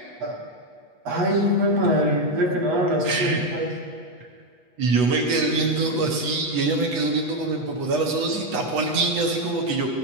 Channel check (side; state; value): left; late; 8.2 ms